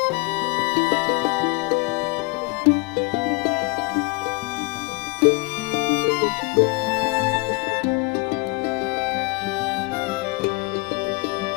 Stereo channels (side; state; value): right; quieter; 28.4 dB